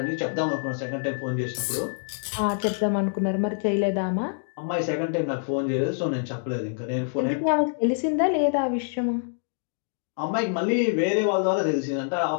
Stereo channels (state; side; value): silent; right; digital silence